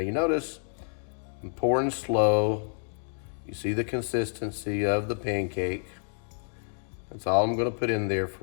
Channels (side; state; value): right; silent; digital silence